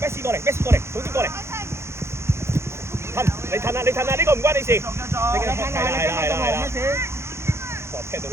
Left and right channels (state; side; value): late; left; 0.13 ms